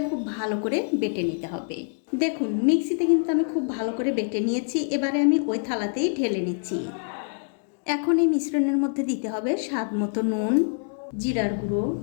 খুব ভালো করে বেটে নিতে হবে। দেখুন মিক্সিতে কিন্তু আমি খুব ভালো করে বেটে নিয়েছি। এবারে আমি ওই থালাতেই ঢেলে নিচ্ছি। এখন এই মিশ্রণের মধ্যে দিতে হবে স্বাদ মতো নুন, জিরার গুঁড়ো,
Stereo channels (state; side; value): silent; right; 61 dB below the other